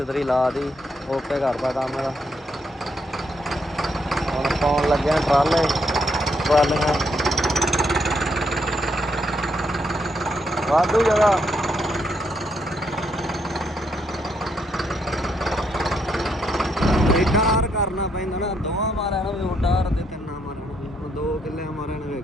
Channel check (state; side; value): normal; both; correlation 0.76